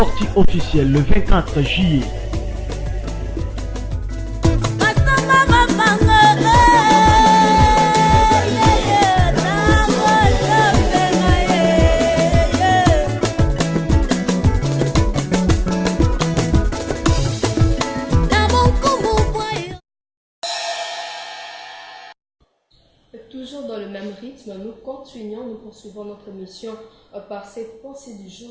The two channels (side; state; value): both; identical; correlation 1.00